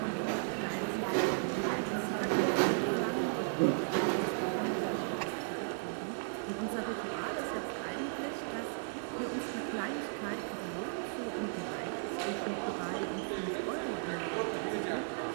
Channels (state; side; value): silent; left; digital silence